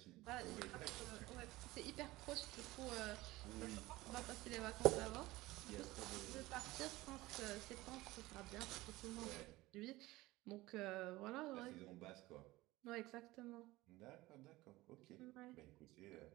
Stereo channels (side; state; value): left; quieter; 19.0 dB